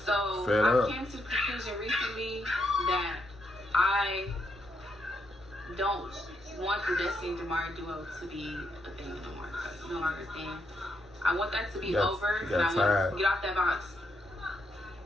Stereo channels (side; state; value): both; normal; correlation 0.79